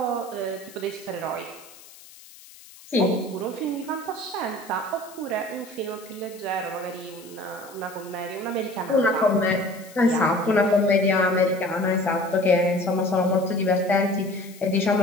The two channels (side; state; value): left; noise; hiss, 21 dB below the sound